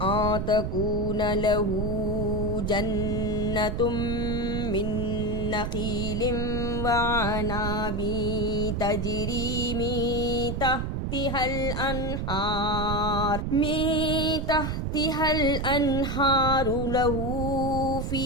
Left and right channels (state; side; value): noise; right; rumble, 2 dB below the sound